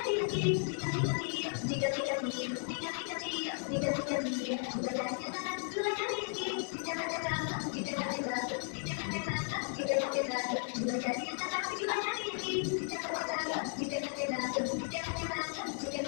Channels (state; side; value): silent; right; 54 dB below the other